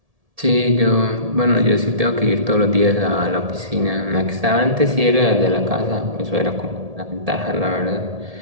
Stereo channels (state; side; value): late; left; 1.7 ms